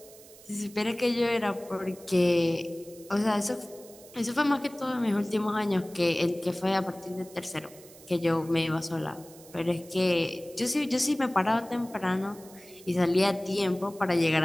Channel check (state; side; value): noise; right; hiss, 21 dB below the sound